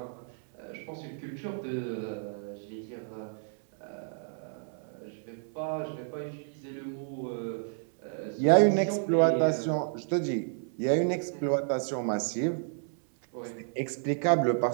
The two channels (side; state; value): left; silent; 57 dB below the other